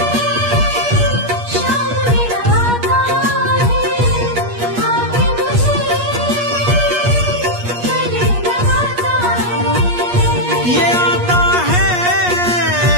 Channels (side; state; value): left; late; 8.4 ms